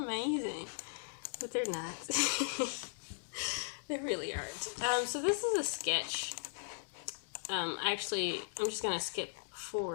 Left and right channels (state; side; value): silent; right; digital silence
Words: But they're not. They really aren't. So this is a sketch. Actually, I'm just going to skip